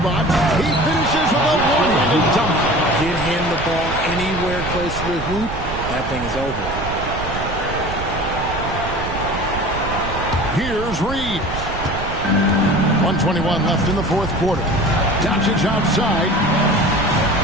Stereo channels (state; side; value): noise; right; rumble, 8 dB below the sound